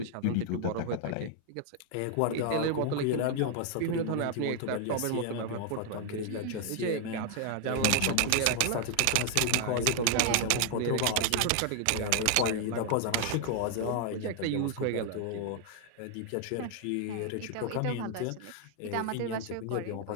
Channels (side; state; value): both; different; correlation 0.00